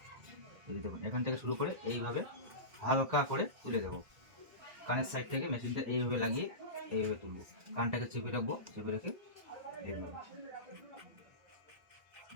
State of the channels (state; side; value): late; left; 1.7 ms